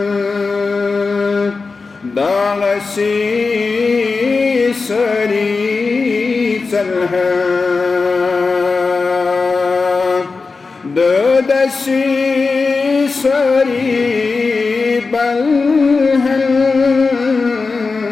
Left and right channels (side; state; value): right; quieter; 4.3 dB